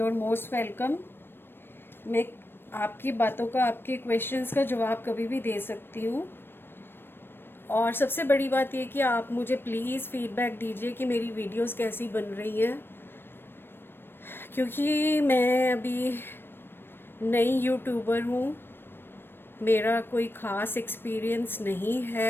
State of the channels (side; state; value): right; late; 0.10 ms